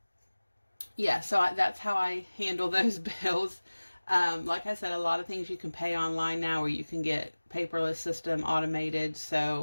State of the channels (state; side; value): inverted; both; correlation -1.00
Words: yeah, so that's how I handle those bills. Like I said, a lot of things you can pay online now, or you can get paperless system automated.